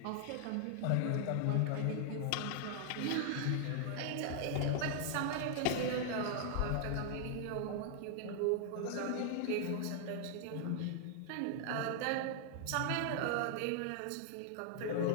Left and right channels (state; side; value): different; both; correlation -0.01